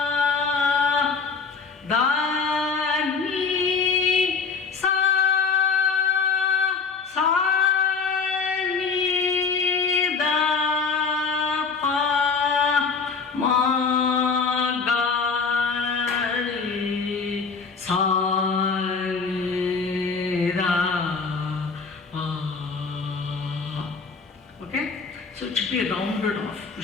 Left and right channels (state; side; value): quieter; right; 5.1 dB